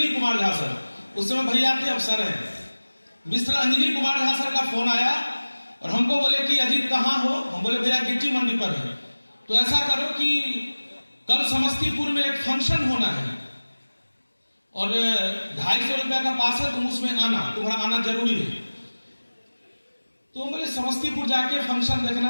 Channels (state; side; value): inverted; both; correlation -1.00